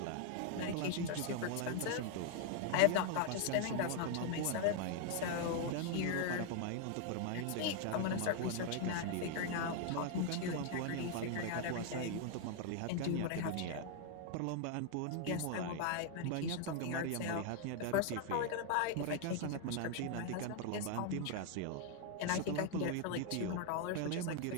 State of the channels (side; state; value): both; different; correlation 0.00